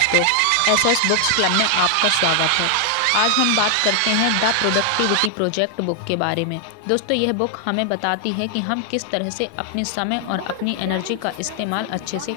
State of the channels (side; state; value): both; different; correlation 0.00